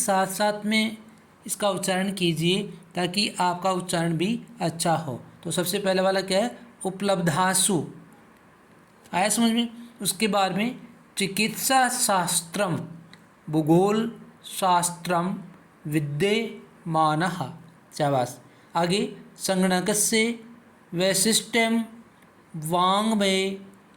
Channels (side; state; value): both; identical; correlation 1.00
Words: साथ साथ में इसका उच्चारण कीजिए ताकि आपका उच्चारण भी अच्छा हो। तो सबसे पहले वाला क्या है? उपलब्धासु। आया समझ में? उसके बाद में चिकित्सा शास्त्रम, भूगोल शास्त्रम विद्यमानः। शाबाश। आगे, संगणकस्य वैशिष्ट्यम वाङ्मये